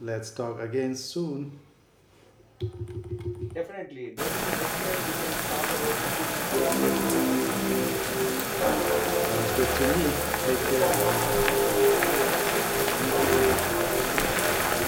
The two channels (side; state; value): both; identical; correlation 1.00